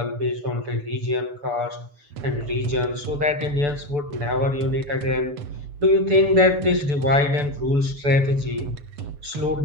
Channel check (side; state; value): left; late; 6.9 ms